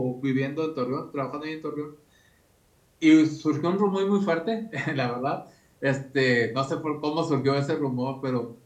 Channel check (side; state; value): both; identical; correlation 1.00